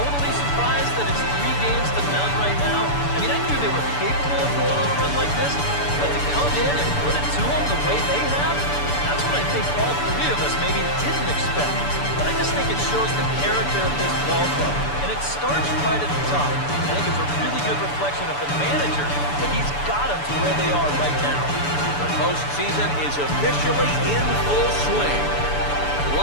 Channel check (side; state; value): right; late; 6.9 ms